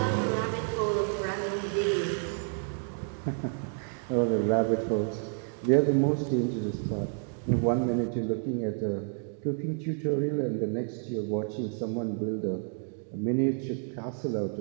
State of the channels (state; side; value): silent; left; 58 dB below the other